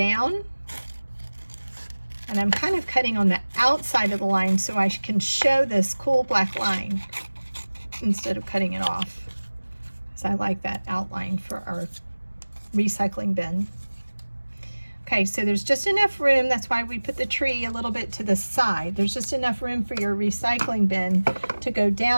And I'm kind of cutting on the outside of the line so I can show this cool black line instead of cutting it off, because I like that outline for our recycling bin. Okay, so there's just enough room. That's why we put the tree a little bit to the side. There's just enough room for your recycling bin to go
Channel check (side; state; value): both; inverted; correlation -1.00